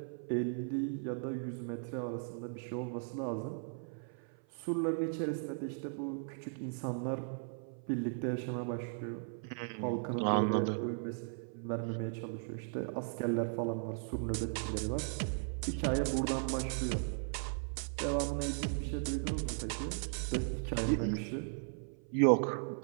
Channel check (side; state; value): left; silent; 53 dB below the other